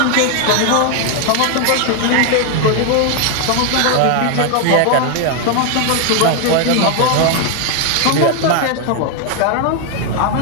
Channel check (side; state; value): both; different; correlation 0.01